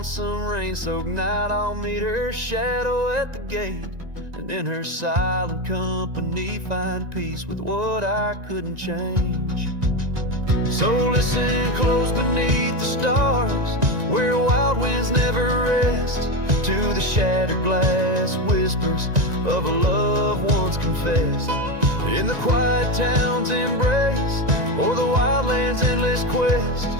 some rain-soaked night I'll meet her shadow at the gate, and in her silent company find peace with what I couldn't change. So listen close beneath the stars, where wild winds never rest, to the shattered glass whispers of a love once confessed. In the quiet town's embrace, or the wildland's endless quest,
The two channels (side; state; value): left; late; 1.9 ms